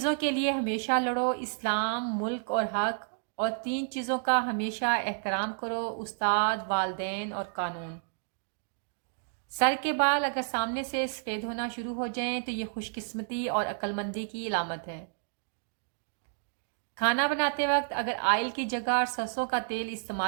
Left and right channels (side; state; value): left; silent; digital silence